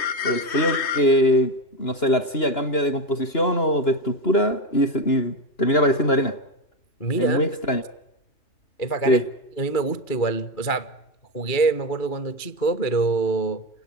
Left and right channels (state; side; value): late; right; 2.9 ms